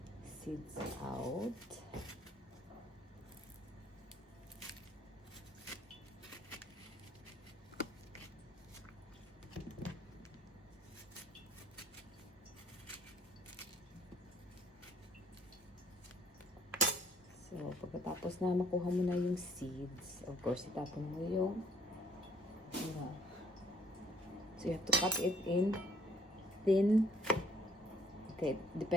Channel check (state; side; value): normal; both; correlation 0.61